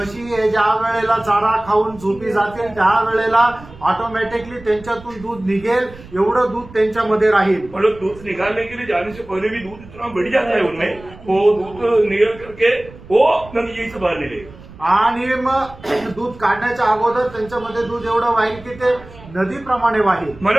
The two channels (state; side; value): noise; right; rumble, 19 dB below the sound